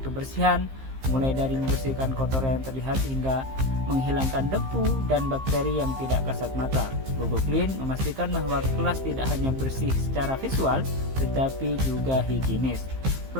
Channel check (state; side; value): late; left; 15 ms